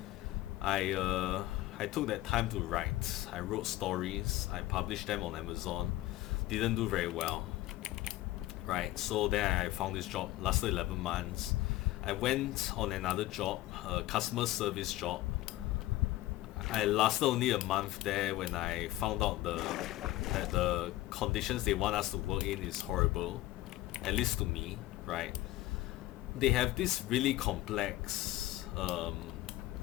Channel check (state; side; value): quieter; right; 16.5 dB